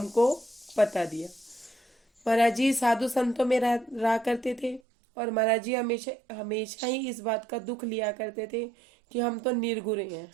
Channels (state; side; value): drops out; left; at 4.8 s